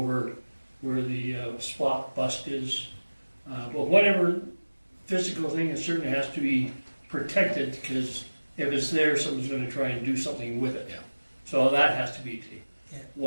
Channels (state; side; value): inverted; both; correlation -1.00